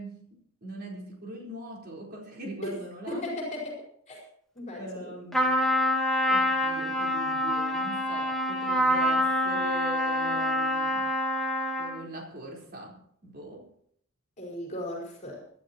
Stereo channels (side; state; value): both; normal; correlation 0.45